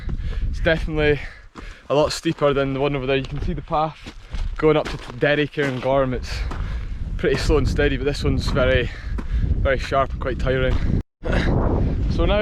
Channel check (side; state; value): both; identical; correlation 1.00